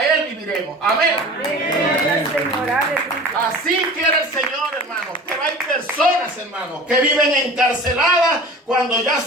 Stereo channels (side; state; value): both; normal; correlation 0.39